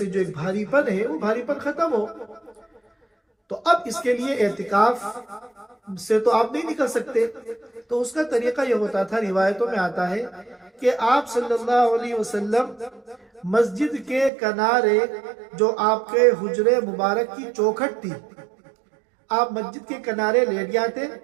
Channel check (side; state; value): left; drops out; at 14.3 s